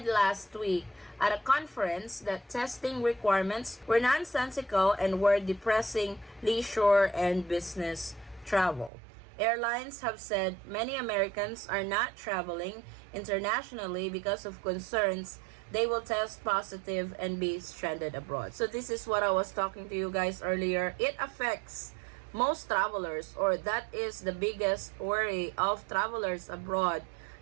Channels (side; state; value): left; drops out; at 8.9 s